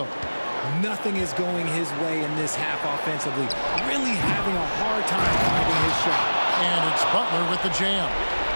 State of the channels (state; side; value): inverted; both; correlation -1.00